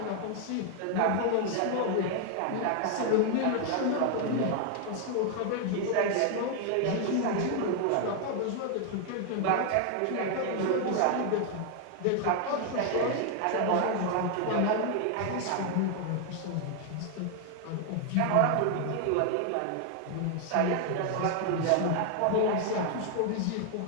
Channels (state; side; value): different; both; correlation 0.00